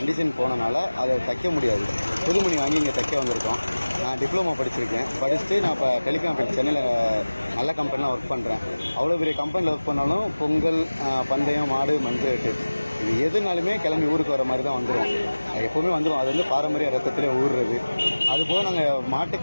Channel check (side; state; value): both; inverted; correlation -1.00